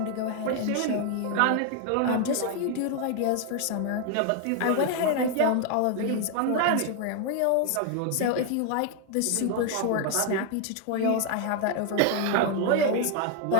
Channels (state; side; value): different; both; correlation 0.00